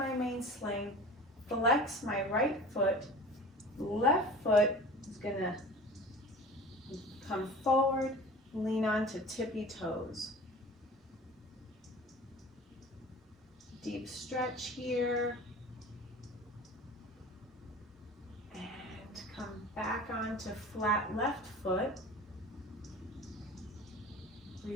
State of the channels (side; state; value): both; normal; correlation 0.40